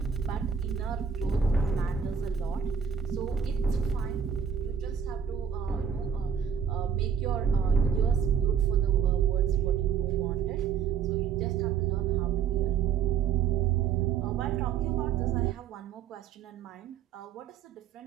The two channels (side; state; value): left; quieter; 7.4 dB